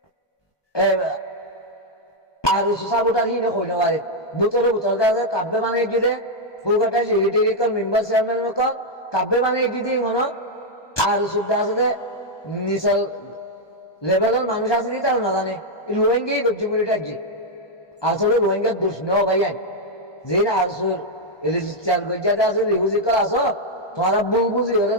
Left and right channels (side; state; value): right; late; 1.2 ms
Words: আর সাবোটার হিনে হইতে পারে বুতরে বুতর আছে কাব্যে বানিয়েছে যে ফুলকাটা সেক্রেটারি মেম্বার চেয়ারম্যান কাব্যে বানিয়েছে যে মনে আর সুবিধা আছে যে নিচের লেভেলের মানুষ আছে নি তারা না জানে রোহিঙ্গাই করছে বলে এটা যে আসলে রোহিঙ্গার দোষ নেওয়া ভাই যে আর রেজিস্টার গজ্জাতে আছে রিফিউজি করা আছো তোমারা ভুল বুঝি হলে